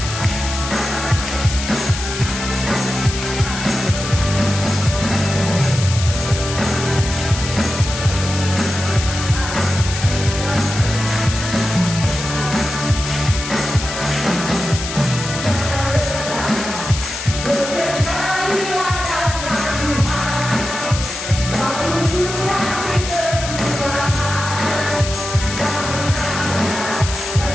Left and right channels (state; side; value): noise; left; hiss, 7 dB below the sound